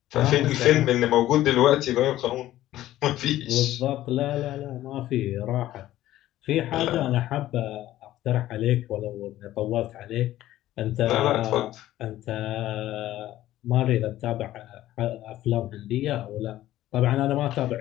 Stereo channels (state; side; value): quieter; right; 14.3 dB